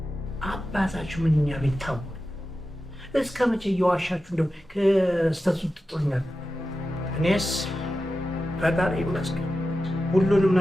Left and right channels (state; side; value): normal; both; correlation 0.92